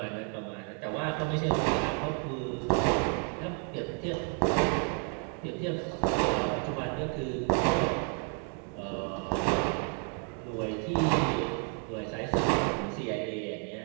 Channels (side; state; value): left; quieter; 38.0 dB